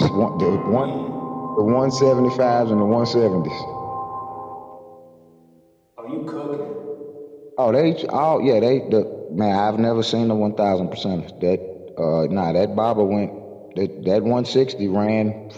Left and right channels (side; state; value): both; identical; correlation 1.00